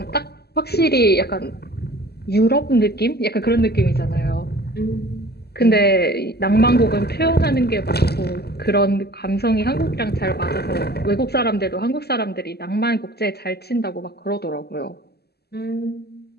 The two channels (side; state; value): right; late; 0.47 ms